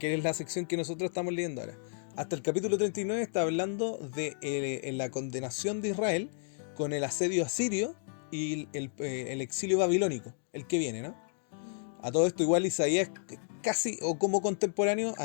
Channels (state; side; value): silent; right; 56 dB below the other